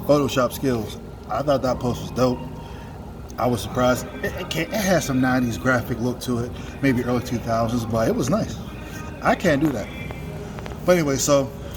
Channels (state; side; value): identical; both; correlation 1.00